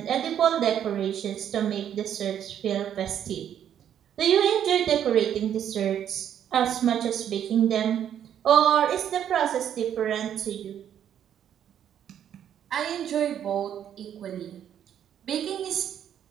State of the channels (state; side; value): quieter; left; 9.7 dB